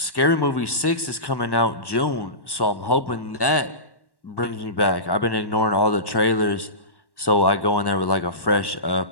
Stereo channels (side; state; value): right; late; 1.1 ms